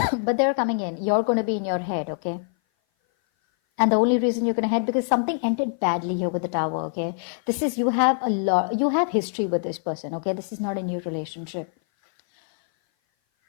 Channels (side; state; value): right; silent; 57 dB below the other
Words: they're coming in. You're going to be in your head, okay? And the only reason you're going to head, because something ended badly here with the Tower, okay? This is, you have history with this person, okay? This is not a new relationship.